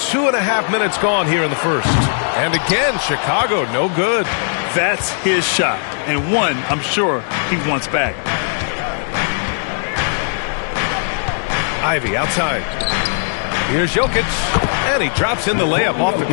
minutes gone here in the first. And again, Chicago, no good. That's his shot. And one, I'm sure, he wants back. Ivey outside. Here's Jokic. And he drops in the layup off the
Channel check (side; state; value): right; silent; digital silence